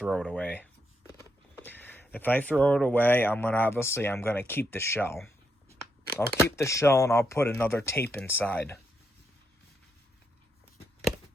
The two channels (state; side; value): normal; both; correlation 0.80